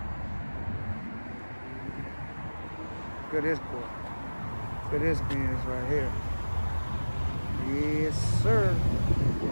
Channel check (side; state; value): both; inverted; correlation -1.00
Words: Look at this boy. Look at this Benz right here. Yes, sir.